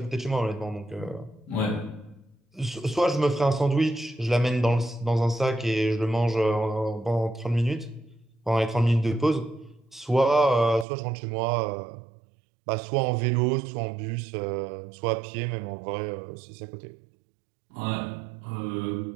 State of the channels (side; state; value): left; drops out; at 10.9 s